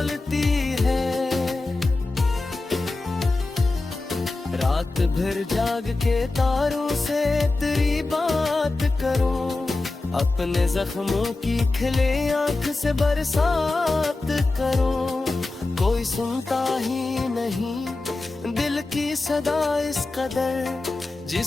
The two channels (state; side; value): quieter; right; 3.2 dB